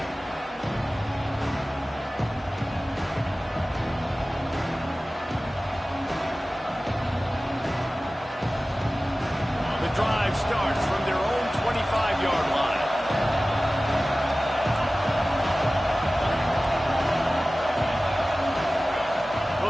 The drive starts from their own 25-yard line.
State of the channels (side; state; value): both; normal; correlation 0.97